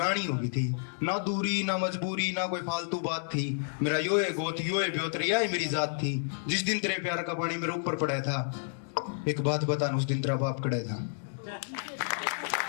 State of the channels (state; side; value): silent; right; digital silence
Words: हो गई थी। ना दूरी ना मजबूरी ना कोई फालतू बात थी। मेरा यो है गोत यो है ब्योतरिया है मेरी जात थी। जिस दिन तेरे प्यार का पानी मेरे ऊपर पड़ा था। एक बात बता उस दिन तेरा बाप कड़ा था।